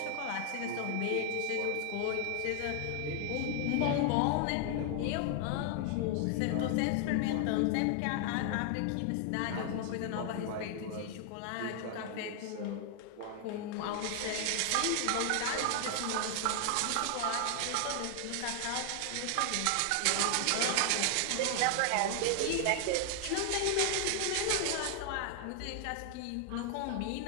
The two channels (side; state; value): both; different; correlation 0.00